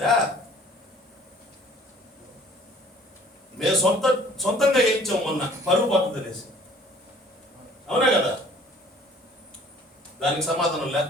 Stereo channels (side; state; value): both; normal; correlation 0.53